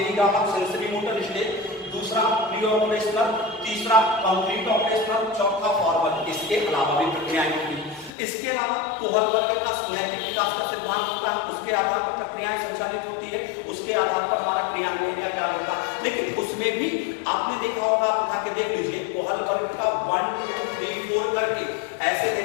सेंसरी मोटर स्टेज, दूसरा प्री ऑपरेशनल, तीसरा कंप्लीट ऑपरेशनल, चौथा फॉरवर्ड। इसके अलावा भी प्रक्रियाएं होती हैं। इसके अलावा कोहलबर्ग का नैतिक विकास का सिद्धांत होता है, उसके आधार पर प्रक्रियाएं संचालित होती है, उसके आधार पर हमारा क्रियान्वयन या क्या होता है। लेकिन उसमें भी आपने देखा होगा, आप उठा के देख लीजिए, कोहलबर्ग का 1 2 3 4 करके ऐसे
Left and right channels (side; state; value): right; drops out; at 8.1 s